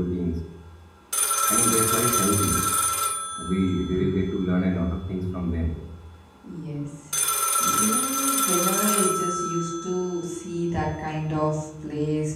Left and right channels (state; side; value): identical; both; correlation 1.00